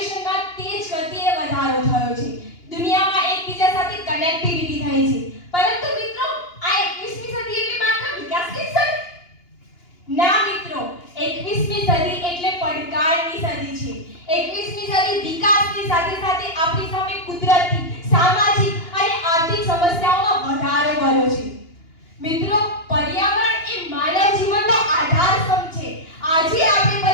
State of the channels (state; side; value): late; right; 2.8 ms